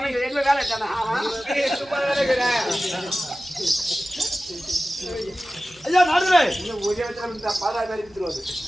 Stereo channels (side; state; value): right; noise; hum, 28 dB below the sound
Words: எங்க வேலை தானே ஐயா நாடுதுரே இன்னும் ஒரே இடத்துல பாதா மாதிரி விட்டுருவாரு